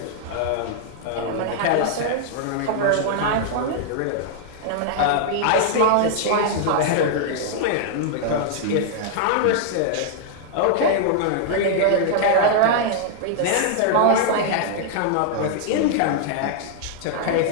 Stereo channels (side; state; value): both; different; correlation -0.01